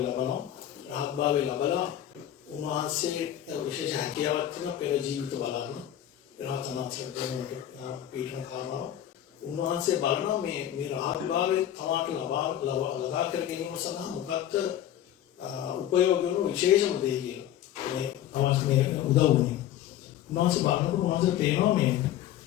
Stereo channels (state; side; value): quieter; right; 11.6 dB